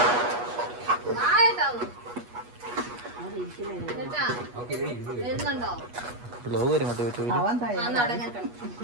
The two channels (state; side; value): late; left; 8.3 ms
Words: ബ്ലോഗ് വരും കേട്ടോ യൂട്യൂബിൽ.